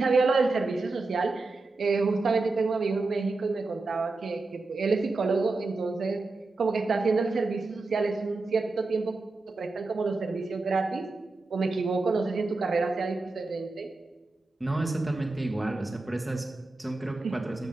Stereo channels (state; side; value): quieter; left; 3.5 dB